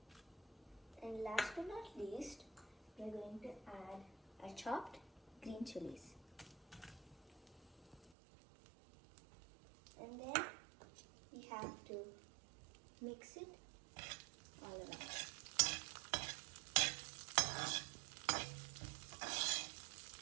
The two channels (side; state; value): left; drops out; at 8.2 s